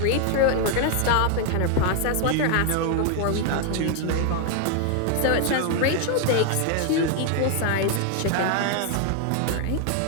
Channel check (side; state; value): both; different; correlation 0.00